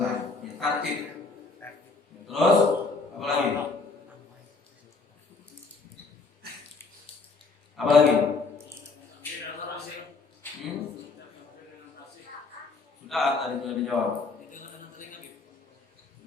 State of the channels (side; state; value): right; quieter; 4.0 dB